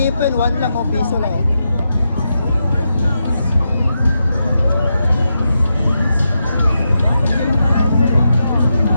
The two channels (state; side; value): inverted; both; correlation -0.86